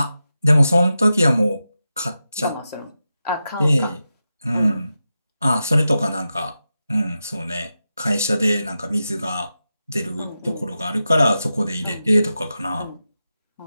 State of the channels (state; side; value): inverted; both; correlation -0.91